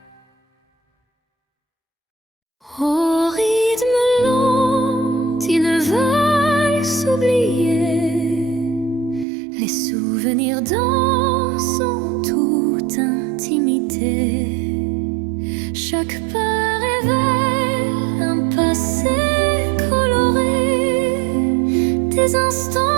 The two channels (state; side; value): drops out; left; at 9.2 s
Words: Au rythme lent, ils veulent s'oublier. Les souvenirs dansent en toute intimité. Chaque pas révèle un passé coloré, des